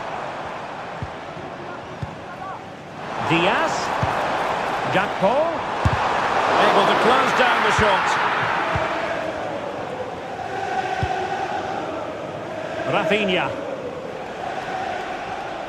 Diaz. Gakpo. Able to close down the shot. Rafinha.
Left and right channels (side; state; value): both; identical; correlation 1.00